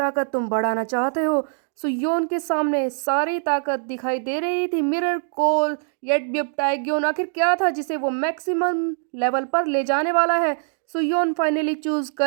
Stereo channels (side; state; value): left; silent; digital silence